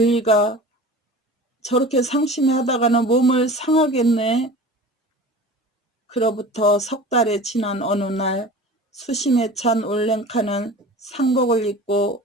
저렇게 상심하다가는 몸을 상하겠네. 그로부터 석 달이 지난 어느 날 수심에 찬 올랭카는 상복을 입고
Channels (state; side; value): normal; both; correlation 0.38